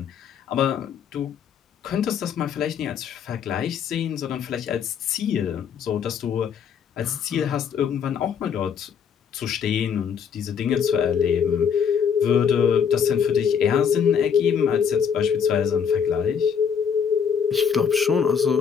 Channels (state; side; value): quieter; right; 7.2 dB